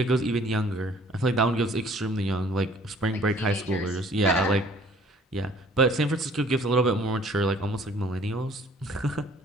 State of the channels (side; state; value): both; normal; correlation 0.56